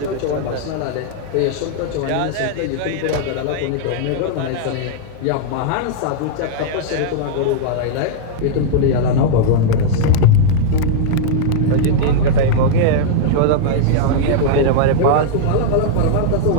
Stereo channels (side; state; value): both; different; correlation -0.01